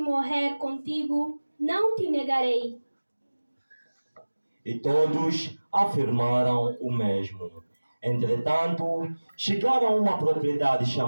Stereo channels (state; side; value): inverted; both; correlation -1.00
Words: contigo, não te negarei. E todos afirmaram o mesmo. Entretanto, chegaram a uma propriedade